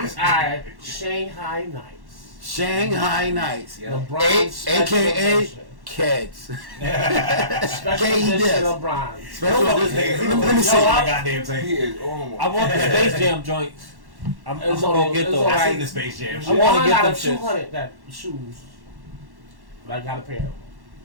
are Shanghai Nights. Shanghai Nights. LeBron AKA Keds. Special edition of Bron. Special edition. Let me see my goddamn thing. He is almost. I want the Space Jam joints. I'm It's gonna all- go get it's those. all I right. seen the Space Jam I shit. wanna I get got them a shits. 200 that shoes. But I got a pair of them.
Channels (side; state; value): left; late; 1.1 ms